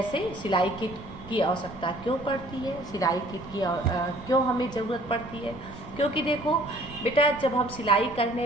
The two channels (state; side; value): noise; right; rumble, 17 dB below the sound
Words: सिलाई किट की आवश्यकता क्यों पड़ती है, सिलाई किट की क्यों हमें ज़रूरत पड़ती है। क्योंकि देखो बेटा जब हम सिलाई